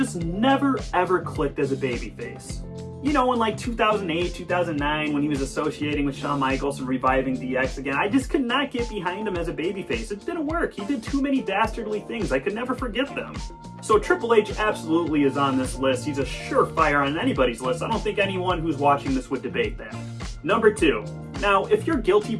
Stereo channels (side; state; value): both; identical; correlation 1.00